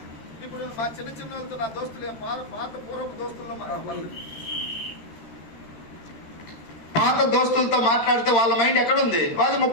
ఇప్పుడు మా చిన్న చిన్న వాళ్ళతో, నా దోస్తులు, పాత దోస్తులతో మాట్లాడితే వాళ్ళ మైండ్ ఎక్కడుంది? వాళ్ళది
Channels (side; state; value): right; late; 13 ms